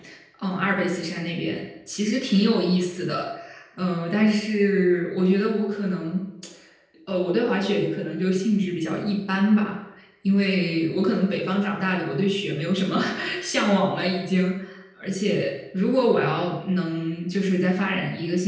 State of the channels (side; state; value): both; identical; correlation 1.00